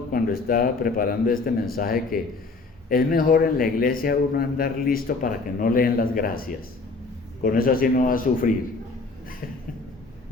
cuando estaba preparando este mensaje que es mejor en la iglesia uno andar listo para que no le den las gracias. Con eso así no va a sufrir.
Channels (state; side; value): quieter; right; 3.8 dB